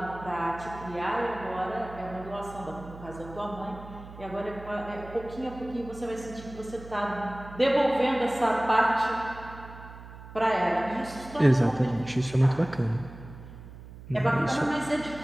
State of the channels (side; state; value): right; noise; hum, 15 dB below the sound